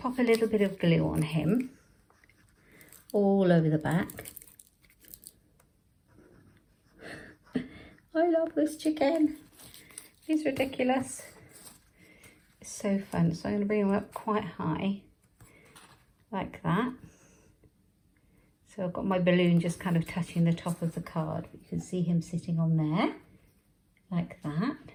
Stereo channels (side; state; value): both; identical; correlation 1.00